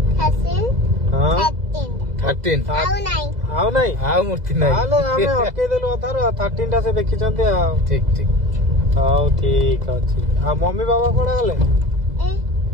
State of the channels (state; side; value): late; left; 2.0 ms